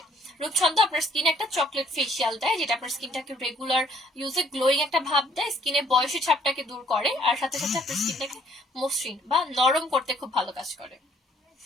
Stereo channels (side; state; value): both; normal; correlation 0.63